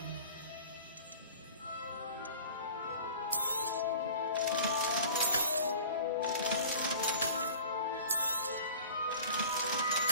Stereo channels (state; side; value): inverted; both; correlation -0.43